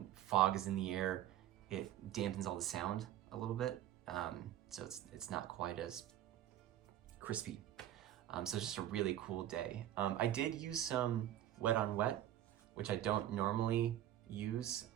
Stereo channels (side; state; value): left; quieter; 12.3 dB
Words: fog is in the air, it dampens all the sound a little bit, so it's not quite as crispy. So it's just a really cool day. I did use some wet on wet, which I don't normally use.